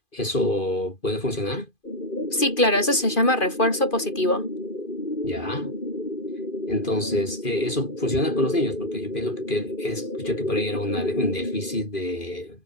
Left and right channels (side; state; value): right; late; 2.5 ms